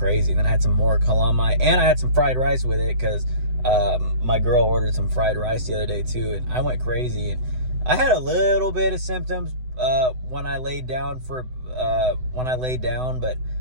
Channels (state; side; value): late; left; 7.9 ms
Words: And then I had some more calamai, and I had some fried rice with it, because my girl ordered some fried rice the other day too, and I went crazy. And I had a little bit of symptoms when I laid down, but